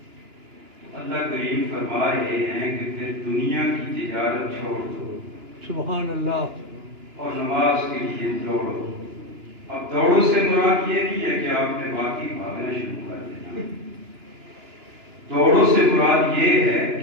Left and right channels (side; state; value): left; late; 2.9 ms